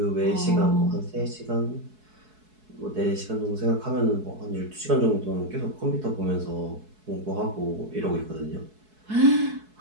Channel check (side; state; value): left; late; 4.7 ms